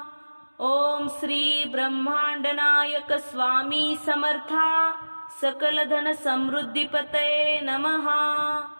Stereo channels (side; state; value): both; inverted; correlation -1.00